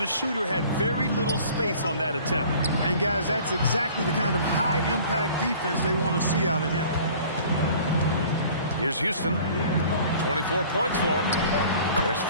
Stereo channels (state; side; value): inverted; both; correlation -0.49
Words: the shooter had very little space on that attempt. And guys, that's exactly the kind of high-impact defense they want to see out of him. Here's Houston. 24 points for him. There's